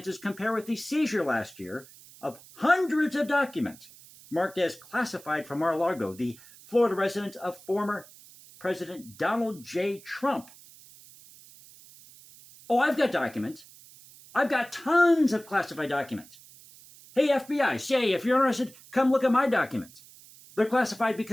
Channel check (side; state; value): right; noise; hiss, 22 dB below the sound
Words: compare with the seizure last year of hundreds of documents marked as classified from Mar-a-Lago, the Florida residence of former President Donald J. Trump. Oh, I've got documents. I've got tons of classified documents. Hey, FBI, CIA, if you're interested, come look at my documents. They're classified